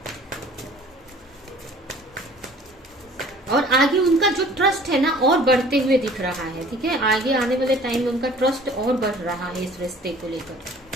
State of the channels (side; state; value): both; normal; correlation 0.50